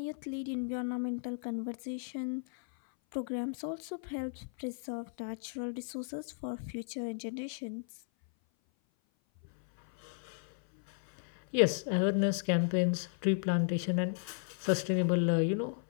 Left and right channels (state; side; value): silent; right; 55 dB below the other